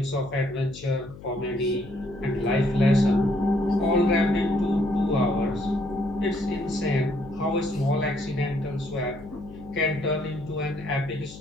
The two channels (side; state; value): left; noise; hum, 16 dB below the sound